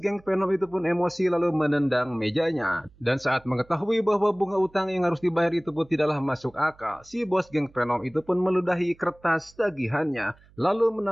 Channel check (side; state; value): right; noise; hum, 28 dB below the sound